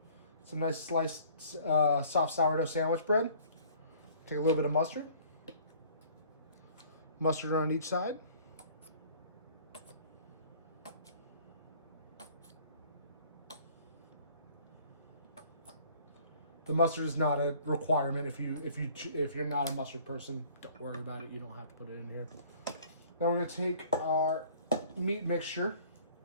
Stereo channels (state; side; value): inverted; both; correlation -0.54